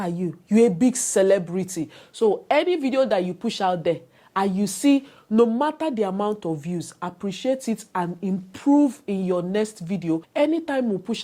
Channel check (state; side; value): identical; both; correlation 1.00